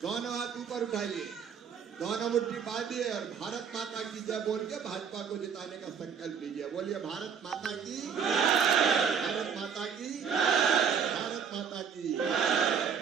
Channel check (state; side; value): quieter; left; 7.0 dB